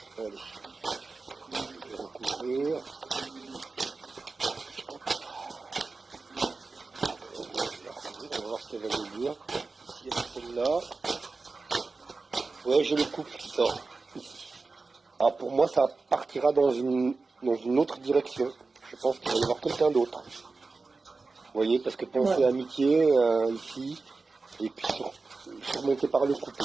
Allez, je vais recouvrir. On va voir ce qu'elle va nous dire. Si c'est celle-là. Ouais, j'ai le couple qui sort ici. Ah, pour moi, ça partira dans une autre direction. Je pense qu'il va y avoir quelqu'un d'autre. Vous voyez, parce que penser amitié ici, et puis surmonté par le couple.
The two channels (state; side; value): quieter; left; 3.9 dB